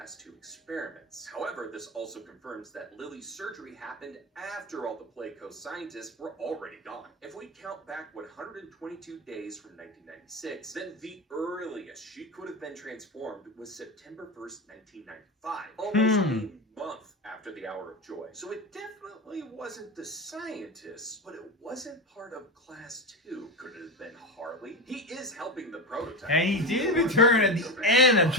2 experiments. However, this also confirms that Lily's surgery happened after all the Playco scientists were already gone. If we count back 122 days from 1996, then the earliest she could have been transformed was September 1st, 1995. Almost a month after the Hour of Joy. So it definitely wasn't the scientists, but it wasn't part of class 2. Could it have been Harley? He is helping the prototype. And he did return at the end of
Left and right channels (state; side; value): normal; both; correlation 0.20